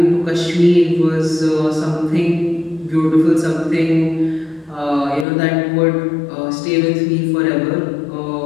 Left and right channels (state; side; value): drops out; right; at 5.2 s